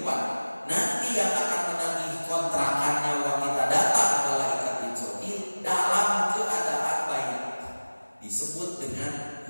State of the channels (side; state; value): both; inverted; correlation -1.00